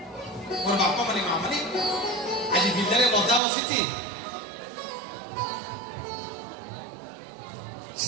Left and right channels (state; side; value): drops out; left; at 3.4 s